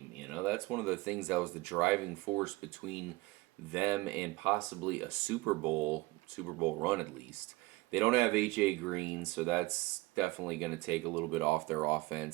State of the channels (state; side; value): quieter; left; 21.2 dB